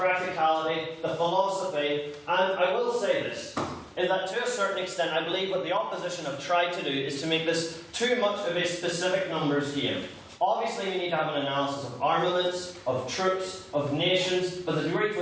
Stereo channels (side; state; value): both; identical; correlation 1.00